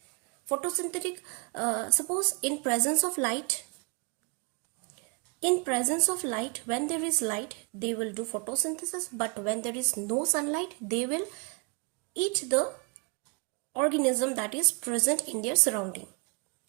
Photosynthetic, suppose in presence of light, when there is light, they will do photosynthesis, but when there is no sunlight, they will eat the organism that is present in their surrounding.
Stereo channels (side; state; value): left; quieter; 34.3 dB